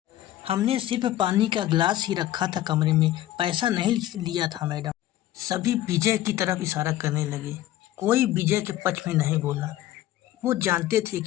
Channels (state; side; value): quieter; right; 13.9 dB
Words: हमने सिर्फ पानी का गिलास ही रखा था कमरे में, पैसा नहीं लिया था मैडम। सभी विजय की तरफ इशारा करने लगे। कोई विजय के पक्ष में नहीं बोला। वो जानते थे